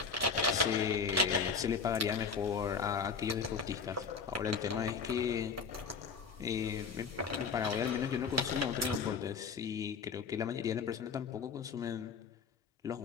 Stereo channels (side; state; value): right; quieter; 5.5 dB